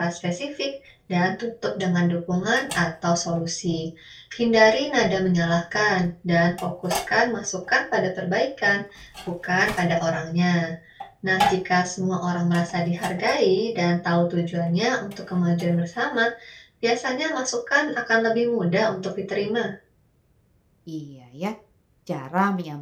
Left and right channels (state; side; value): identical; both; correlation 1.00